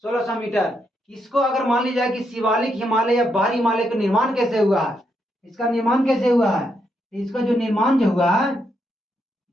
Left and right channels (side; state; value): both; normal; correlation 0.79